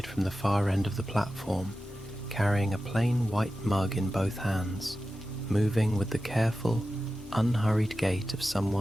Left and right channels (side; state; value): both; normal; correlation 0.93